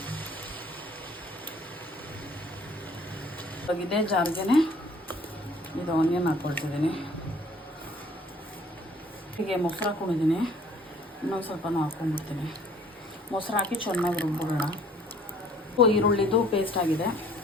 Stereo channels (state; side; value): normal; both; correlation 0.56